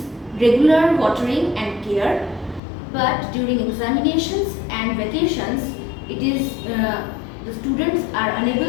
regular watering and care. But during examinations and vacations, it is the students are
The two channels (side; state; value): right; drops out; at 2.6 s